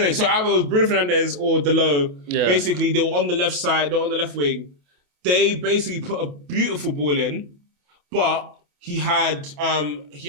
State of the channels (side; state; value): left; late; 28 ms